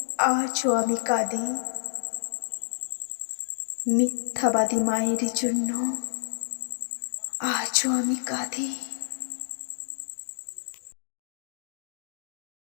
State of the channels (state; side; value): silent; right; digital silence